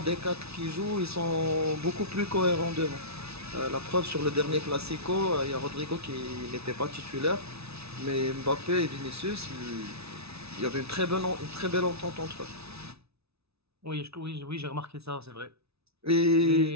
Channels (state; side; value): late; left; 0.79 ms